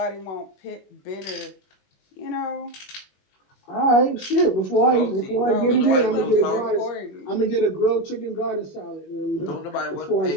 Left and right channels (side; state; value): right; late; 21 ms